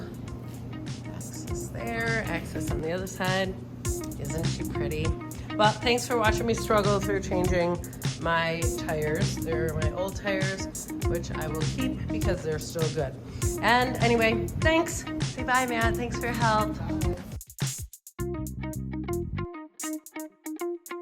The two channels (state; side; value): identical; both; correlation 1.00